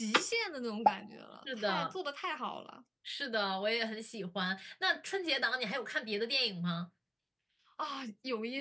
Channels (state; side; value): identical; both; correlation 1.00